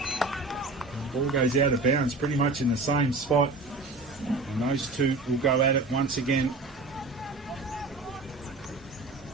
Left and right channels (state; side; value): quieter; left; 3.1 dB